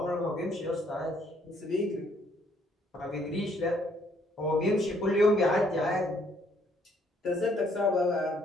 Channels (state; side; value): normal; both; correlation 0.66